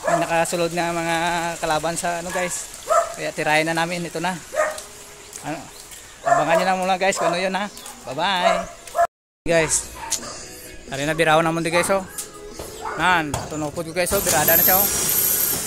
May nakasulod na mga kalaban sa ano guys. Kaya tirahin na namin ito na. Ano? Abangan nyo lang muna guys kung ano yun ha. Bye bye. Guys. Hari na biraho naman di guys oh. Nan, tunupod ko guys oh, birada na siya oh.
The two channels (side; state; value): both; identical; correlation 1.00